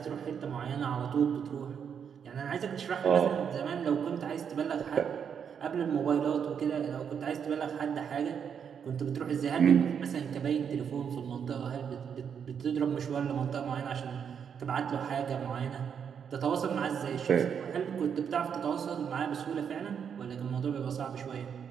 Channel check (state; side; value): quieter; left; 7.5 dB